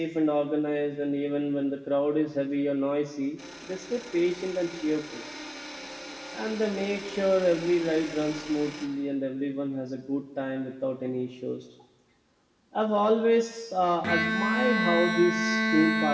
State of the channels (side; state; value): both; identical; correlation 1.00